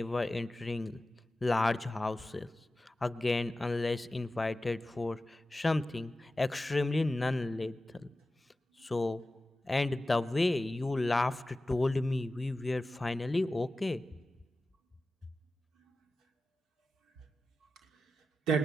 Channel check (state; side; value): normal; both; correlation 0.94